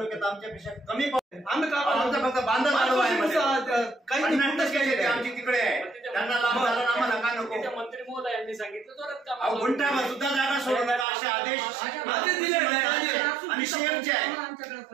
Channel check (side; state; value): left; drops out; at 11.1 s